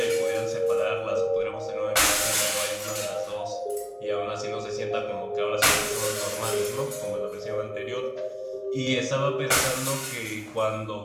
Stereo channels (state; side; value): identical; both; correlation 1.00